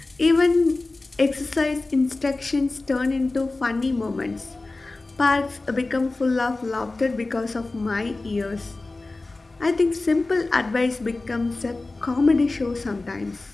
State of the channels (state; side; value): quieter; right; 3.2 dB